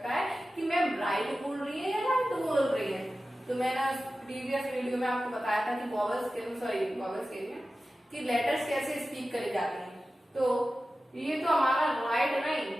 है कि मैम राइट बोल रही है या राइट बोल रही है। तो मैंने प्रीवियस वीडियो में आपको बताया था कि वॉवल्स के लिए कि लेटर्स कैसे स्पीक करे जाते हैं। तो ये तो हमारा राइट नहीं,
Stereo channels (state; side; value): normal; both; correlation 0.94